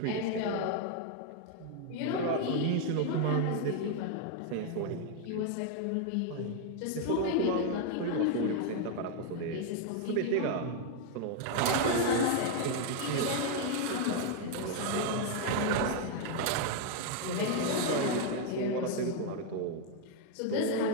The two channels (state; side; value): different; both; correlation 0.00